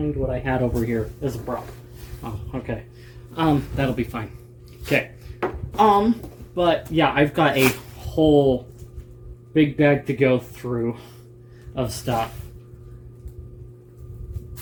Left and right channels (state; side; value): identical; both; correlation 1.00